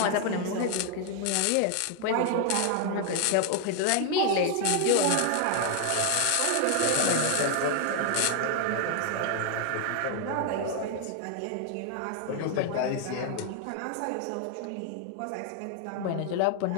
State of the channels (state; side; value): different; both; correlation 0.00